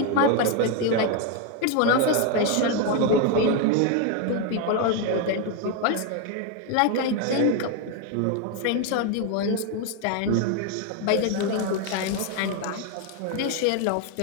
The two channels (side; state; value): both; different; correlation 0.01